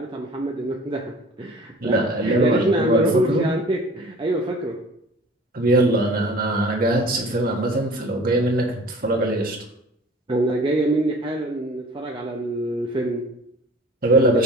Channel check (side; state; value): both; normal; correlation 0.45